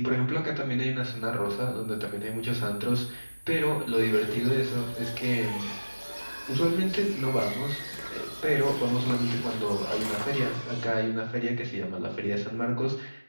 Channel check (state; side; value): inverted; both; correlation -1.00